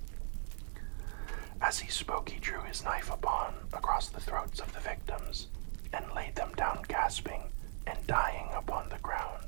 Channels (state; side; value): silent; left; digital silence